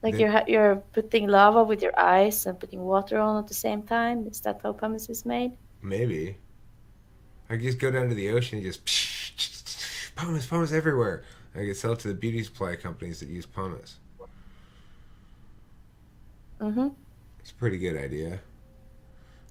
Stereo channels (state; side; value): identical; both; correlation 1.00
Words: Like Then- you're putting lava with your ice and putting water on at the same time. Is that how pumice is made? Maybe. I could just go down to the ocean and just pumice everywhere. I could sell it to the beauty supply companies that use pumice. Mm-hmm. It's a pretty good idea.